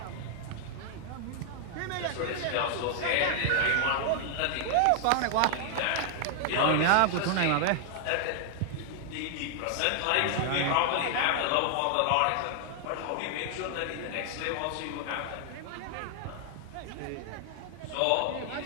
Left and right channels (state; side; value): different; both; correlation 0.00